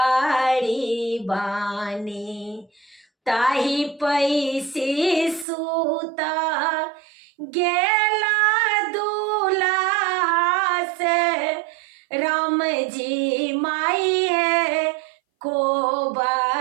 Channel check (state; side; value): drops out; left; at 5.5 s